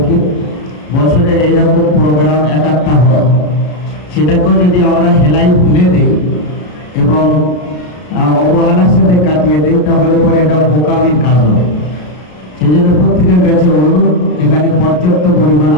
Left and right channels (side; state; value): right; late; 33 ms